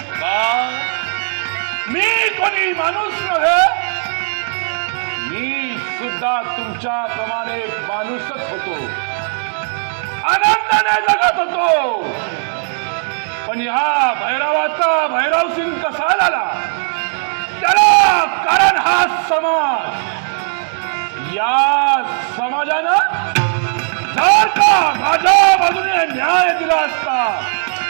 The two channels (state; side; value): silent; left; digital silence